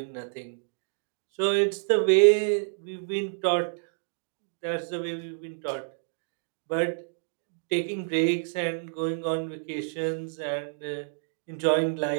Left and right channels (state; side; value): silent; left; digital silence